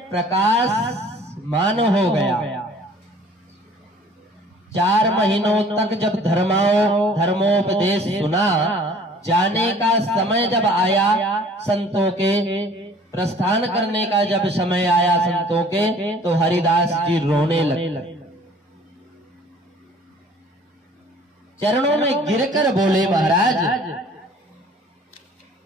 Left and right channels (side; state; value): both; normal; correlation 0.52